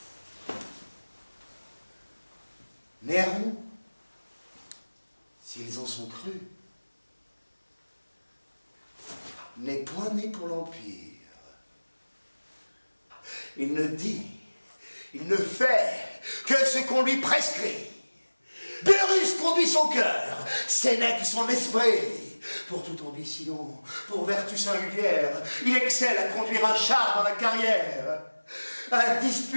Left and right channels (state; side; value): inverted; both; correlation -1.00